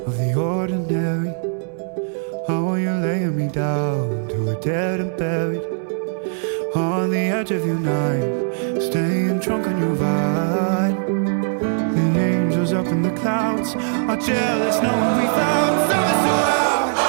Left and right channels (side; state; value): left; silent; digital silence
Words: of the ordinary. How are you laying me down to a dead and buried on the edge of your night, staying drunk on your vine. The angels up in the clouds are jealous knowing we found something so out